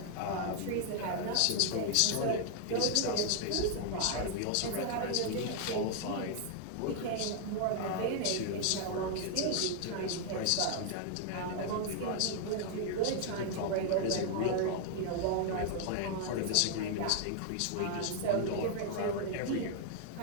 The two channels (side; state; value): both; different; correlation 0.00